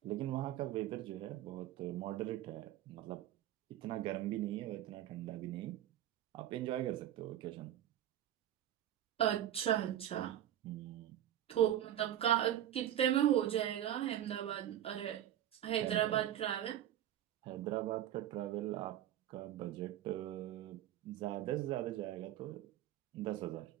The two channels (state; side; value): quieter; left; 11.9 dB